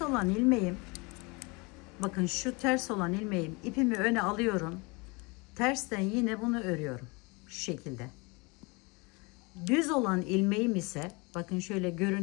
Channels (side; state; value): right; quieter; 27.9 dB